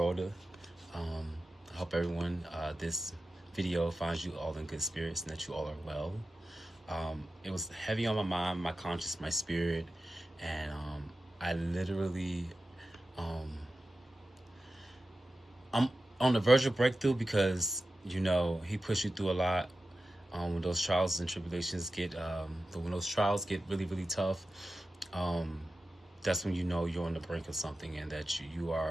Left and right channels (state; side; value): normal; both; correlation 0.93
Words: Um, I hope everyone, this video finds you all in good spirits and that you all are well. It was heavy on my mind, my conscience, my spirit, and I literally, um, I'm on the verge of breakthrough because he pushed you through a lot. When those trials and tribulations but when those trials get really, really tough, um, that's when you know you're on the brink of something and that you